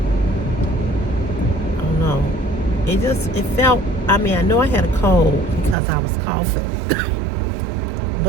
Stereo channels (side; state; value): left; drops out; at 5.8 s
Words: don't know. It felt, I know I had a cold because I was coughing.